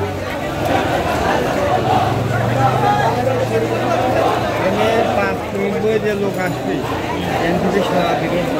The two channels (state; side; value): identical; both; correlation 1.00